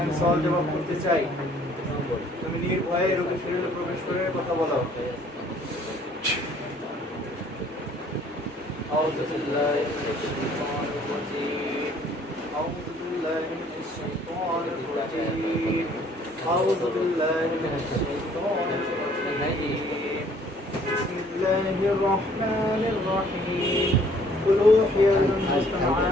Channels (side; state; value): both; normal; correlation 0.59